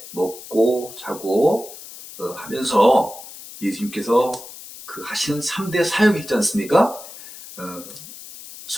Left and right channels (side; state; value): left; noise; hiss, 15 dB below the sound